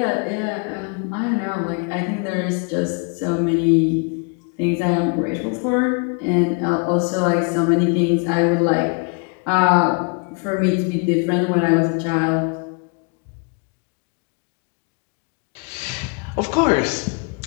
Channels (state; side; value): quieter; right; 35.3 dB